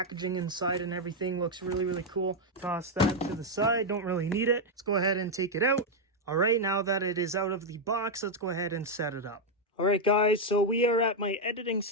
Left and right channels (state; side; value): normal; both; correlation 0.01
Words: inside and everything looks really cool. Toss that to the side, don't really need it. Let's go ahead and take it out. Alright, now that it is out of the box, let's go ahead and set it up. Alright guys, so we are at my editing